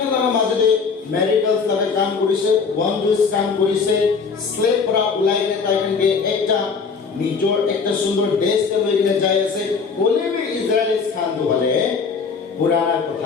লাগা মাজতে মেৰিকলছ লাগা কাম কৰিছে, ওয়ান্ডাৰছ কাম কৰিছে, স্লেভ পৰা ওলাই কিনে তাইকে একটা নিজৰ একটা সুন্দৰ দেশতে লৈ কিনে যাই আছে। কলে বি ইজৰাইলিছ কামটো হলে পুৰানা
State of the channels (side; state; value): right; quieter; 5.3 dB